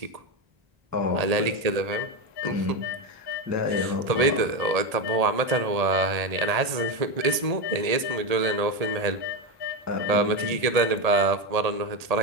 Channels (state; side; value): late; left; 1.8 ms